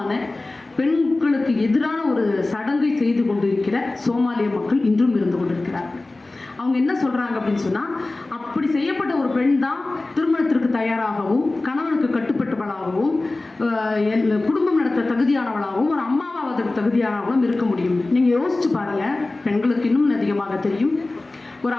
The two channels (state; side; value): quieter; right; 3.1 dB